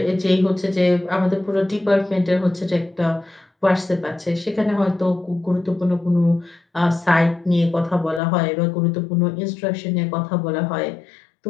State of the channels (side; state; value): right; drops out; at 8.2 s